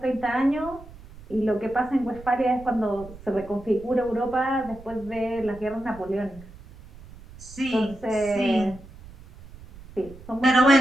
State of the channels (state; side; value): noise; right; rumble, 19 dB below the sound